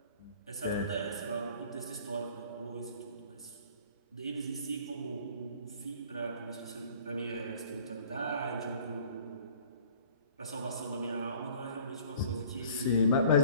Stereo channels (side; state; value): both; inverted; correlation -0.51